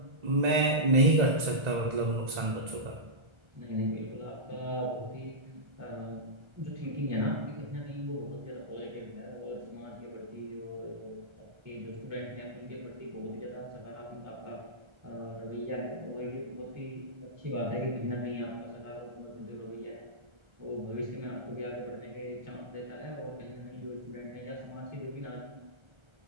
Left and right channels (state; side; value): late; left; 1.3 ms